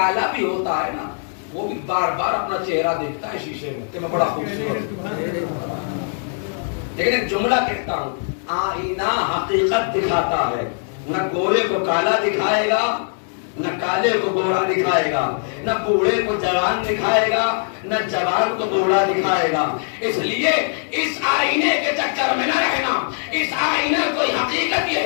بھی ہوتا ہے نا وہ بھی بار بار اپنا چہرہ دیکھتا ہے شیشے میں کہ میں بڑا خوبصورت. لیکن ایک جملہ کہتا ہوں، آئینہ حقیقت دکھاتا ہے. نہ گورے کو کالا دکھائے گا، نہ کالے کو گورا دکھائے گا، نہ بوڑھے کو جوان دکھائے گا، نہ جوان کو بوڑھا دکھائے گا. اس لیے اس آئینے کے چکر میں نہ رہنا. اس آئینے کوئی حقیقت یہ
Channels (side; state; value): right; silent; 65 dB below the other